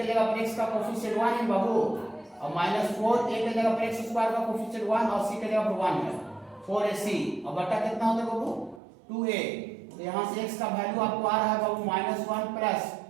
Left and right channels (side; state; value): left; drops out; at 8.8 s